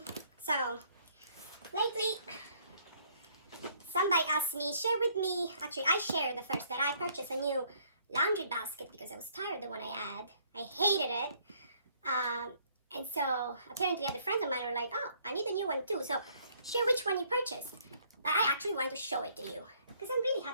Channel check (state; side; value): inverted; both; correlation -0.64